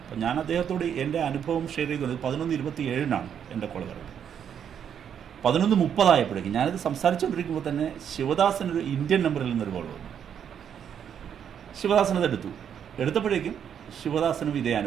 അപ്പം ഞാൻ അദ്ദേഹത്തോട് എൻ്റെ അനുഭവം ഷെയർ ചെയ്തുകൊണ്ട് 11:27 എൻ്റെ കോൾ വരുന്നത്. 11:30 ഞാനിത് സംസാരിച്ചുകൊണ്ടിരിക്കുമ്പോൾ തന്നെ ശിവദാസനൊരു ഇന്ത്യൻ നമ്പറിൽ നിന്നൊരു കോൾ വന്നു. ശിവദാസനത് എടുത്തപ്പോഴേക്കും ശിവദാസനും ഇതേ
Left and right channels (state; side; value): quieter; left; 8.5 dB